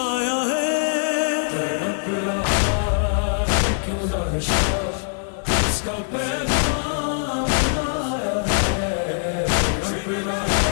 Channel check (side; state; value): right; silent; digital silence